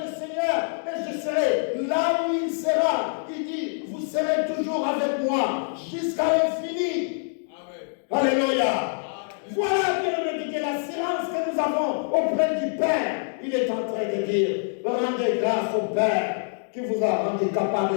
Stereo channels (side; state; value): right; silent; digital silence